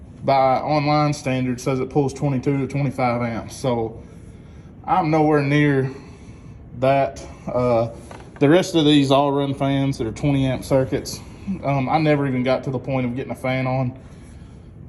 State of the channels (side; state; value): both; identical; correlation 1.00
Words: by online standard says it pulls 22 to 25 amps. So I'm nowhere near that. The rest of these all run fans that are 20 amp circuits. I never even got to the point of getting a fan on.